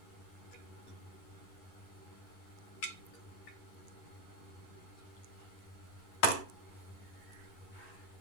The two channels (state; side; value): late; right; 11 ms